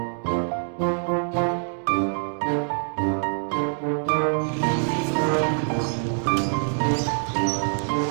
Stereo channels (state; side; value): silent; left; 57 dB below the other